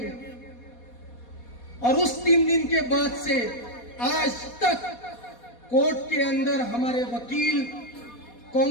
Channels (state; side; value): late; right; 4.2 ms